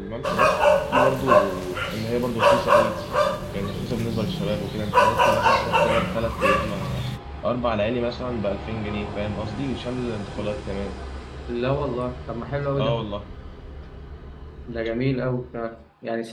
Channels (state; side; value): identical; both; correlation 1.00